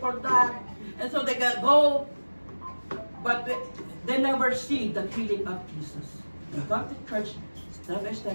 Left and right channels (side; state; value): both; inverted; correlation -1.00